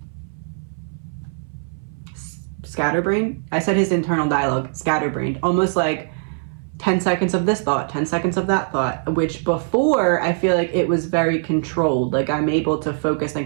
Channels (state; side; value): silent; left; 60 dB below the other